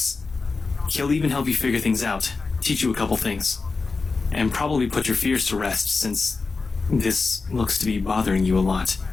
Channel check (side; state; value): right; quieter; 4.2 dB